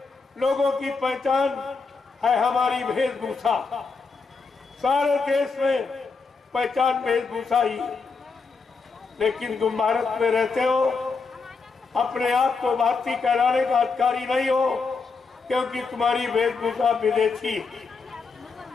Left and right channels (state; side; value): quieter; right; 4.6 dB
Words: लोगों की पहचान है हमारी वेशभूषा। सारे देश में पहचान वेशभूषा ही, लेकिन तुम भारत में रहते हो, अपने आप को भारतीय कहलाने का अधिकारी नहीं हो, क्योंकि तुम्हारी वेशभूषा विदेशी।